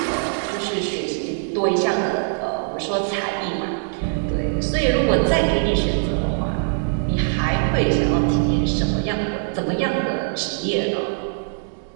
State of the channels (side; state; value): left; silent; 64 dB below the other